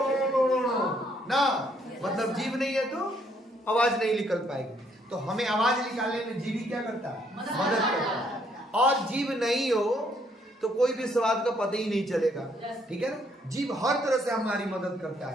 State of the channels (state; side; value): normal; both; correlation 0.69